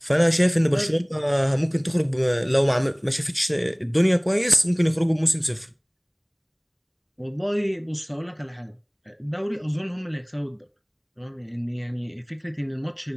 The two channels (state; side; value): identical; both; correlation 1.00